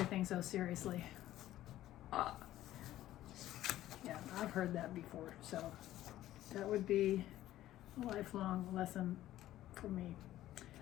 so seriously. Yeah, I've heard that before, so that would be a lifelong lesson for me.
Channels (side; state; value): right; quieter; 14.0 dB